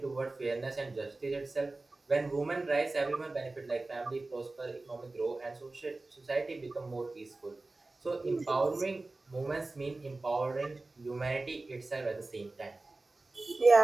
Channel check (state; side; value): quieter; left; 3.2 dB